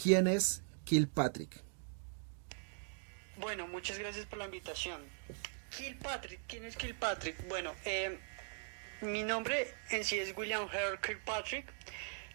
¿quién es Kilpatrick? Bueno, muchas gracias por la invitación. Kilpatrick, ¿quién es Kilpatrick? Bueno, mi nombre en sí es William Harold Kilpatrick.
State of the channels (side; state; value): left; silent; 51 dB below the other